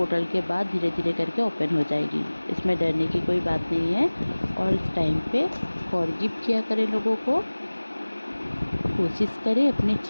के बाद धीरे धीरे करके ओपन हो जाएगी, इसमें डरने की कोई बात नहीं है। और इस टाइम पे फॉरगिव किया करें लोगों को, कोशिश करें अपनी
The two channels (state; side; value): inverted; both; correlation -1.00